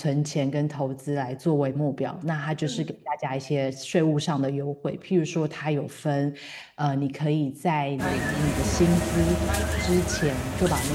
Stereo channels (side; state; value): both; identical; correlation 1.00